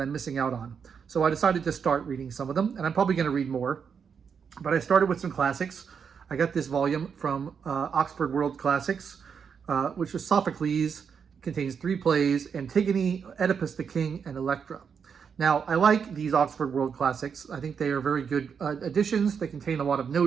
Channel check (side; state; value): left; quieter; 6.6 dB